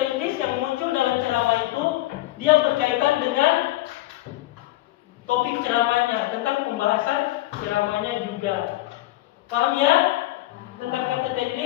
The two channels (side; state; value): right; quieter; 17.3 dB